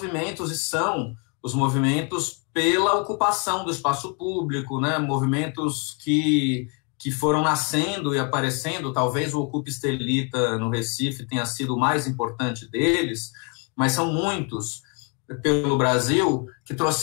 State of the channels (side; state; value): right; quieter; 34.9 dB